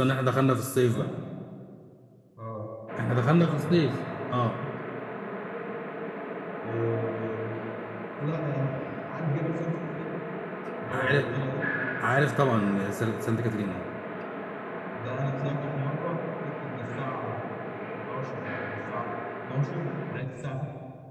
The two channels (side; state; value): both; identical; correlation 1.00